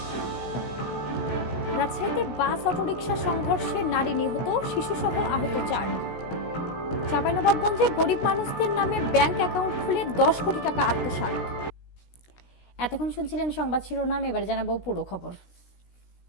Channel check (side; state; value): right; late; 16 ms